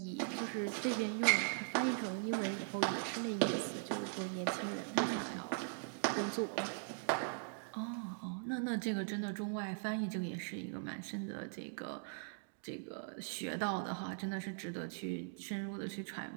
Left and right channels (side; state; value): left; silent; digital silence